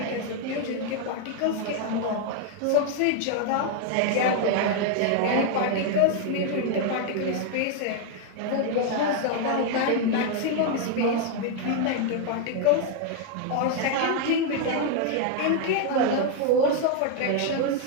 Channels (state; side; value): different; both; correlation 0.00